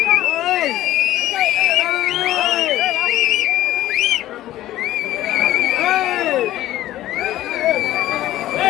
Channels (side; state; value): right; quieter; 14.4 dB